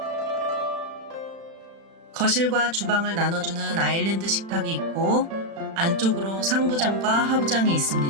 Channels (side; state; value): left; late; 36 ms